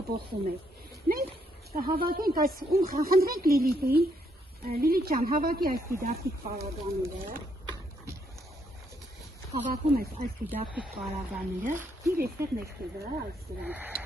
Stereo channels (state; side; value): normal; both; correlation 0.73